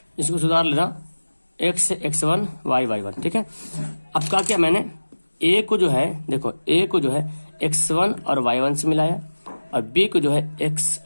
इसको सुधार लेना, x1 y1, ठीक है। अब क्या किया मैंने, ए को जो है देखो, ए को जो है x1 और y1 से मिलाया और बी को जो है x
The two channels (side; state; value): both; inverted; correlation -1.00